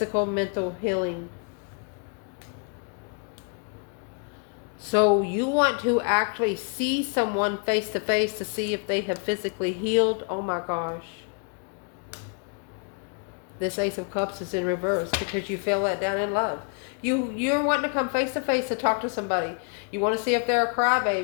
mental healing. So you want to actually see someone face to face to see if they have physically healed. Oh my gosh. This Ace of Cups is in reverse because you feel let down in love. You're wanting to come face to face to talk to somebody. You want to see if they're a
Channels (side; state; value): right; quieter; 38.7 dB